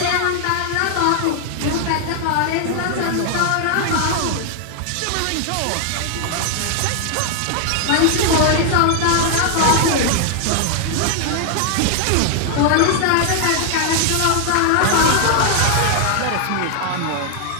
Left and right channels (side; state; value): both; different; correlation 0.00